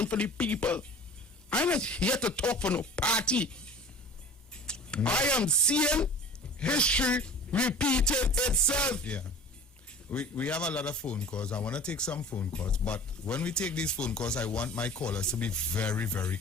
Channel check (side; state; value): both; normal; correlation 0.42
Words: for the people. I'm not here to talk for no party. I am seeing history repeating itself. Yeah. We have a lot of phone calls. I want to take some phone calls, but when we take these phone calls, I want my callers to be very, very